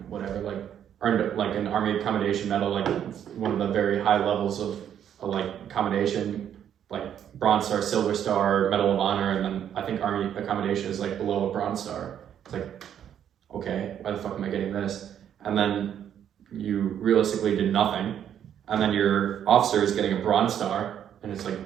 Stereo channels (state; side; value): quieter; left; 9.5 dB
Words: whatever, like, earned like an Army Accommodation Medal, like one of the very high levels of like accommodation, like Bronze Star, Silver Star, Medal of Honor, and then I think Army Accommodation is like below a Bronze Star. It's like, okay, why the fuck am I getting this? And then you realistically did nothing, and then your officer is getting a Bronze Star, and it's like,